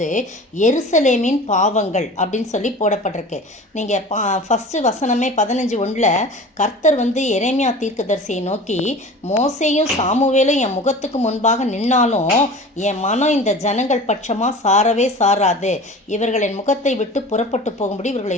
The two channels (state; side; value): normal; both; correlation 0.38